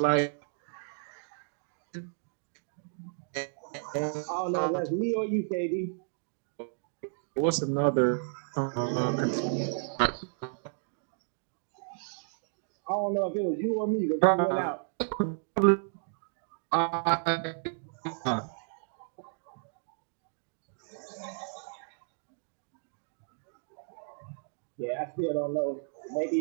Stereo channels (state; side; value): silent; left; digital silence